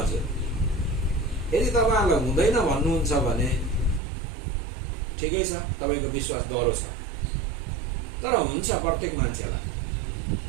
यदि तपाईँहरूलाई हुँदैन भन्नुहुन्छ भने ठिकै छ, तपाईँको विश्वास डह्रो छ। तर हुन्छ प्रत्येक मान्छेलाई।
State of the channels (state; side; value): drops out; left; at 4.0 s